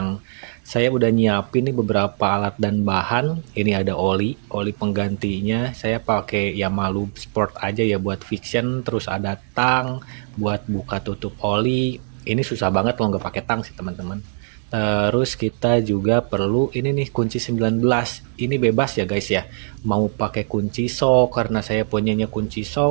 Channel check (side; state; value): left; silent; digital silence